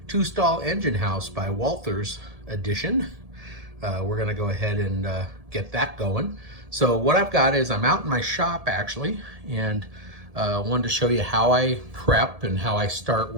two-stall engine house by Walthers edition. We're going to go ahead and get that going. So what I've got is I'm out in my shop actually, and wanted to show you how I prep and how I start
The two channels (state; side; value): late; left; 1.7 ms